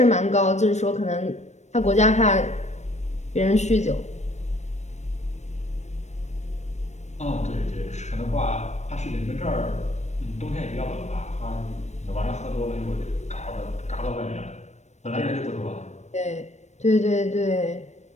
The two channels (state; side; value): late; right; 0.33 ms